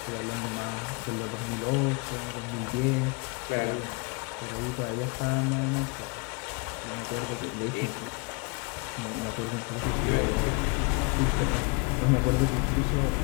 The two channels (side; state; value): right; quieter; 30.8 dB